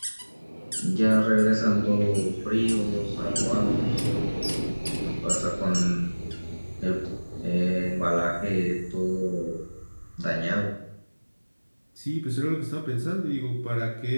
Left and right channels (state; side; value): inverted; both; correlation -1.00